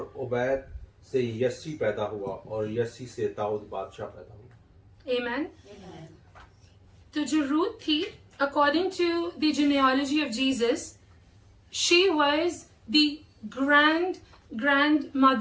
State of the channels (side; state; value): both; identical; correlation 1.00